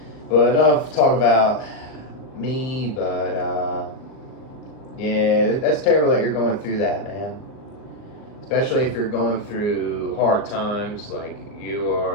But enough talk about me, but yeah, that's terrible that you're going through that, man. Especially if you're going through hard times, like you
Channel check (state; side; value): late; right; 38 ms